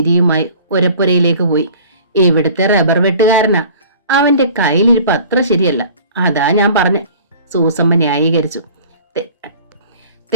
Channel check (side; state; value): both; inverted; correlation -0.46